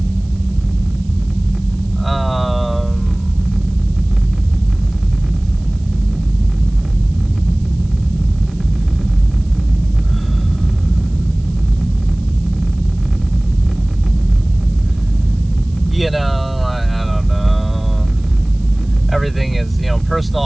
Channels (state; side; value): noise; right; hiss, 30 dB below the sound